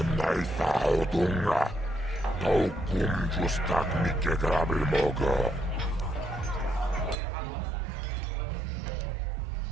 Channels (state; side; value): drops out; left; at 7.2 s